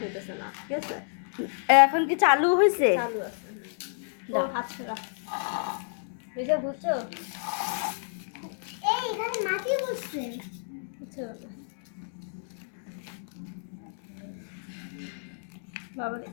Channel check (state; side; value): silent; right; digital silence